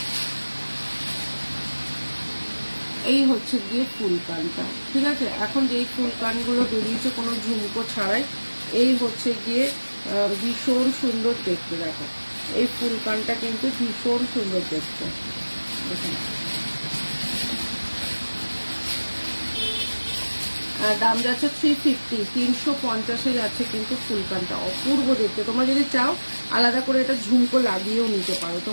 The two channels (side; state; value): both; inverted; correlation -1.00